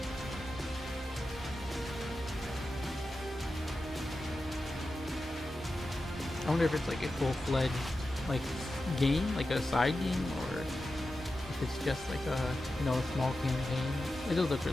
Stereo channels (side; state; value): both; normal; correlation 0.92